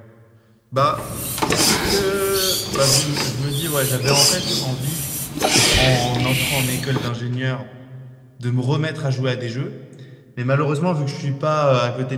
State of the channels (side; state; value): both; identical; correlation 1.00